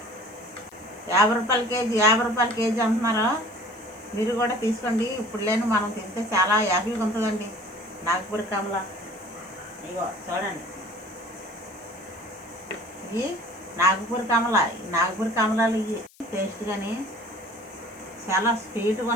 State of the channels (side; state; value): left; noise; hiss, 27 dB below the sound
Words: 50 రూపాయల కేజీ, 50 రూపాయల కేజీ అంటున్నారు. మీరు కూడా తీసుకోండి. ఇప్పుడు లేని మనం తింటే చాలా హ్యాపీగా ఉంటుందండి. నాగపూర్ కమల ఇగో చూడండి, ఇవి నాగపూర్ కమల. నాగపూర్ కమలాలు ఇవి టేస్ట్ కానీ చాలా స్వీట్గా